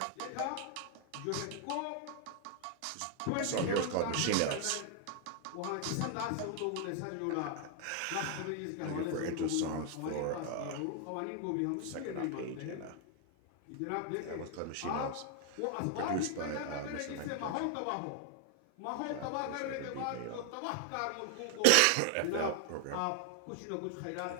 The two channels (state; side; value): different; both; correlation 0.00